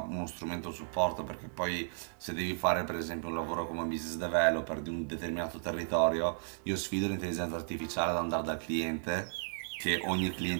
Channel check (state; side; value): silent; left; digital silence